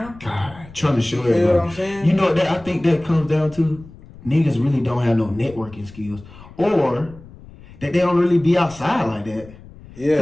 God, trying to show everybody. You know what I'm saying? You know that I think that comes down to niggas really don't have no networking skills, or that they don't really be outside like that.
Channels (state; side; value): noise; left; rumble, 20 dB below the sound